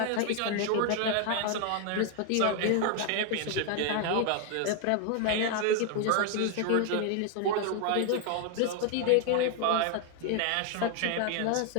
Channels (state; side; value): different; both; correlation 0.00